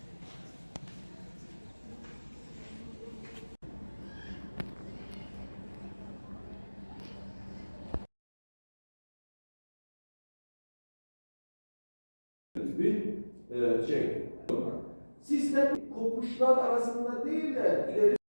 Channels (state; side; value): inverted; both; correlation -1.00